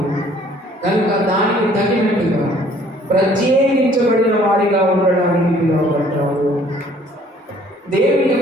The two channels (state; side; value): normal; both; correlation 0.58